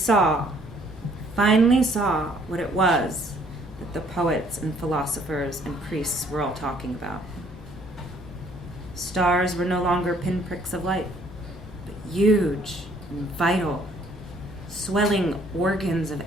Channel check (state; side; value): normal; both; correlation 0.62